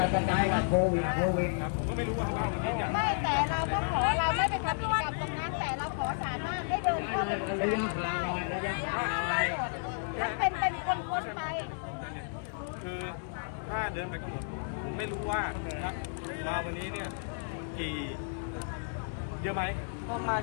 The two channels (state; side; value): silent; right; 56 dB below the other